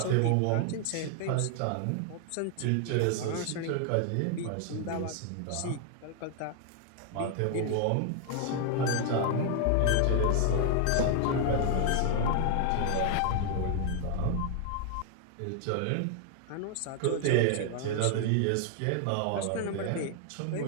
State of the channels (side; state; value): both; different; correlation 0.00